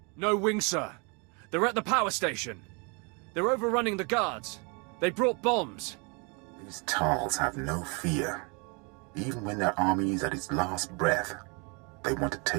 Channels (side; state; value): left; quieter; 32.6 dB